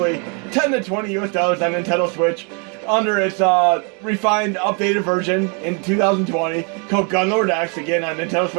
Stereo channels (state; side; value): quieter; left; 35.9 dB